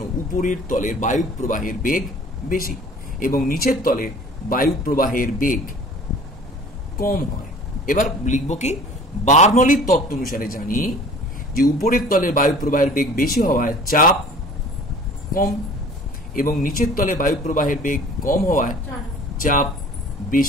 উপরের তলের বায়ু প্রবাহের বেগ বেশি এবং নিচের তলের বায়ু প্রবাহের বেগ কম হয়। এবার লিখব কি? বার্নৌলির তত্ত্ব অনুসারে জানি যে উপরের তলের বায়ু প্রবাহের বেগ বেশি হওয়ায় চাপ কম, এবং নিচের তলে বায়ু প্রবাহের বেগ কম হওয়ায় চাপ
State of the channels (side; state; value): both; normal; correlation 0.47